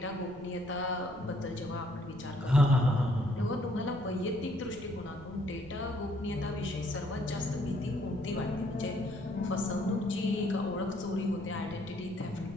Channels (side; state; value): right; noise; rumble, 19 dB below the sound